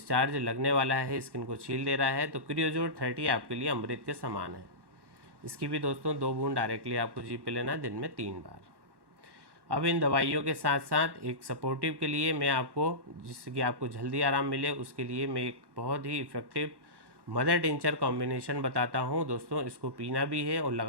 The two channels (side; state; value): left; late; 1.1 ms